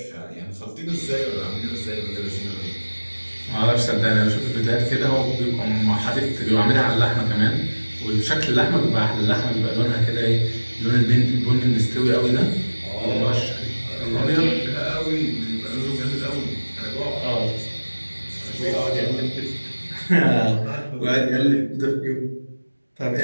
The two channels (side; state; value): both; inverted; correlation -1.00